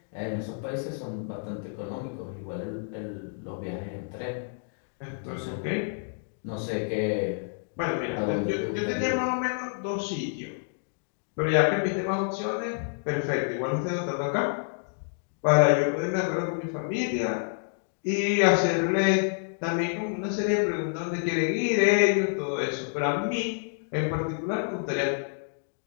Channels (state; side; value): silent; right; digital silence